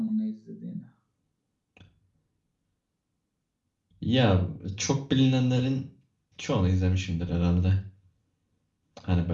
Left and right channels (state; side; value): identical; both; correlation 1.00